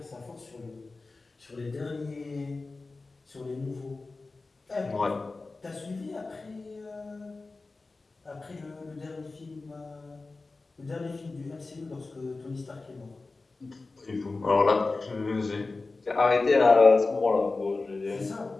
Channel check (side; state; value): right; quieter; 3.6 dB